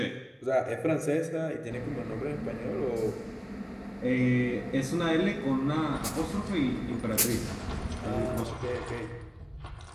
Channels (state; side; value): identical; both; correlation 1.00